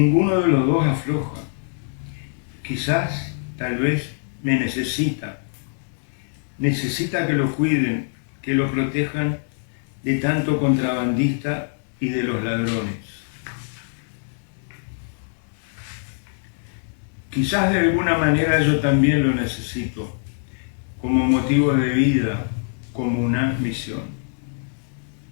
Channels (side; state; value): right; silent; 62 dB below the other